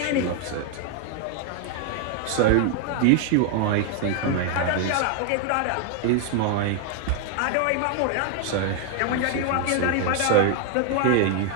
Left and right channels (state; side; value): different; both; correlation 0.00